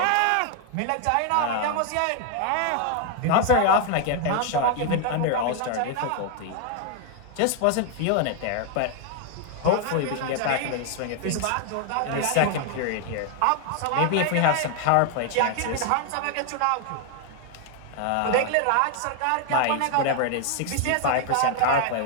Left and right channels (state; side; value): different; both; correlation 0.00